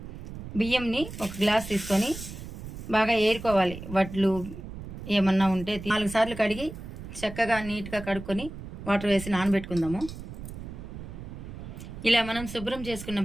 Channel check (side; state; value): right; noise; rumble, 11 dB below the sound